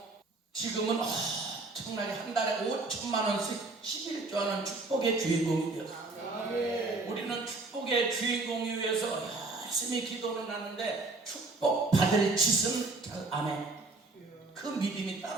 지금은 엄청나게 한 달에 5천만 원씩 11조 하는 축복의 주인공이에요. 우리는 축복의 주인공이 위해서 열심히 기도는 하는데 축복 받을 짓은 잘 안 해. 그 믿음이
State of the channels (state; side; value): quieter; left; 3.4 dB